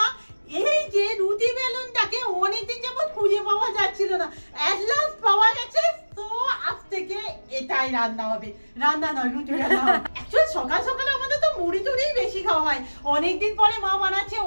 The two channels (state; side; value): inverted; both; correlation -1.00